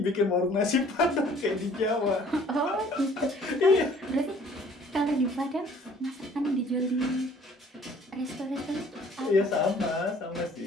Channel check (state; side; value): normal; both; correlation 0.55